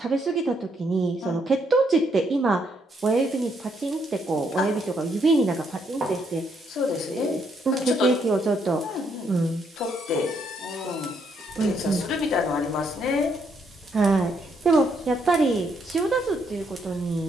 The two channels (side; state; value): both; normal; correlation 0.74